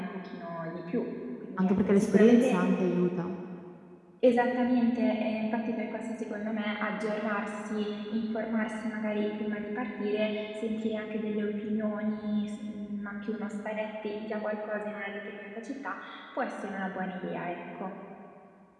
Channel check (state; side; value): identical; both; correlation 1.00